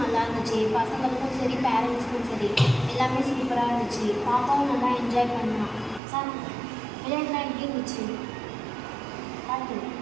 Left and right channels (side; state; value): left; drops out; at 6.0 s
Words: நல்லா இருந்துச்சு. பசங்களுக்கும் சரி, பேரண்ட்ஸுக்கும் சரி, எல்லாமே சூப்பராக இருந்துச்சு. பாப்பாவும் நல்லா என்ஜாய் பண்ணலாம். சார், விளையாட்டுலாம் எப்படி இருந்துச்சு? பார்த்து